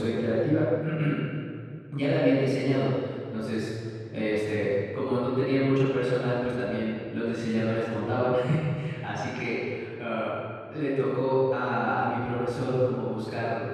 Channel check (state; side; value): identical; both; correlation 1.00